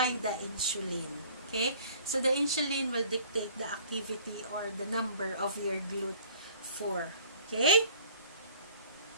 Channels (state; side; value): inverted; both; correlation -0.52